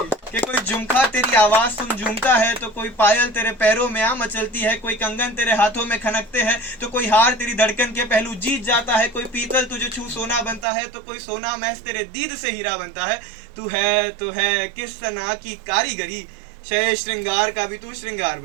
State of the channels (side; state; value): left; drops out; at 10.7 s